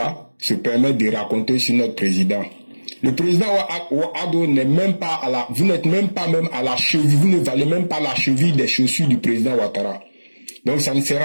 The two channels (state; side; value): inverted; both; correlation -1.00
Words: se permettent de raconter sur notre président. Le président Ouattara n'est même pas vous n'êtes même pas même à la cheville, vous ne valez même pas la cheville des chaussures du président Ouattara. Donc ça ne sert